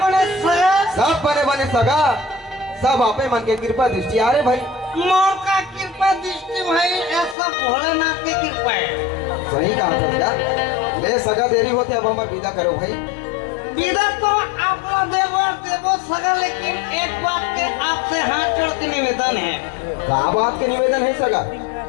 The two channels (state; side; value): drops out; right; at 7.4 s